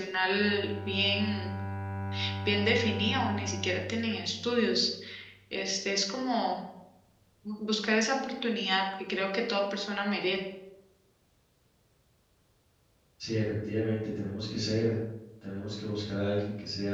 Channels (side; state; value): both; identical; correlation 1.00